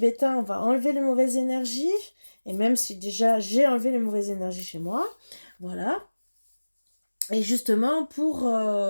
on va enlever les mauvaises énergies. Et même si déjà j'ai enlevé les mauvaises énergies chez moi, voilà. Et justement pour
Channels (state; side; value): inverted; both; correlation -1.00